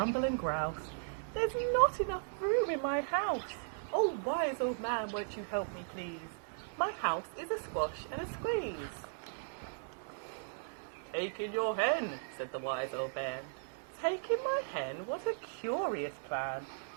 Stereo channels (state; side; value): silent; left; digital silence